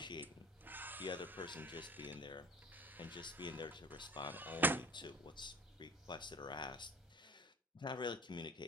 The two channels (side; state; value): both; normal; correlation 0.43